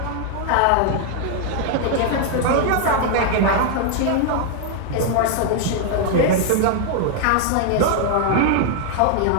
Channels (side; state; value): both; different; correlation 0.00